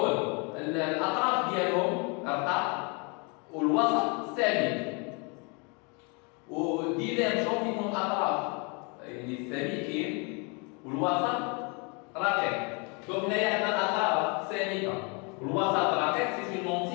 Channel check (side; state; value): right; quieter; 32.8 dB